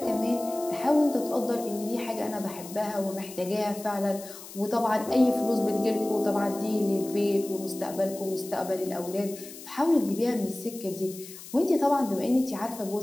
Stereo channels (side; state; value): left; noise; hiss, 15 dB below the sound